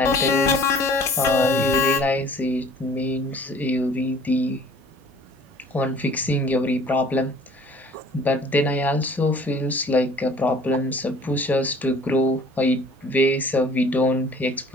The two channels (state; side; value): normal; both; correlation 0.51